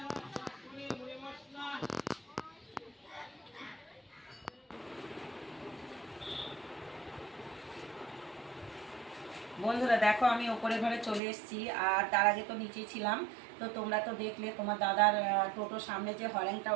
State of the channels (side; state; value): left; drops out; at 11.2 s